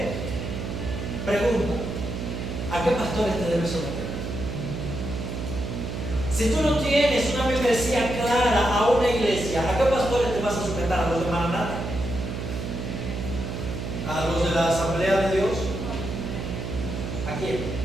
Pregunta, ¿a qué pastores te debes someter? Si tú no tienes una membresía clara a una iglesia, ¿a qué pastores te vas a sujetar? ¿A los de Maranatha? ¿A los de la Asamblea de Dios? ¿A quién?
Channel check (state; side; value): noise; right; hum, 5 dB below the sound